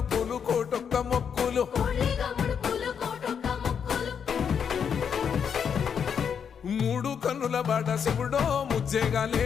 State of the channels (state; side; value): quieter; right; 7.3 dB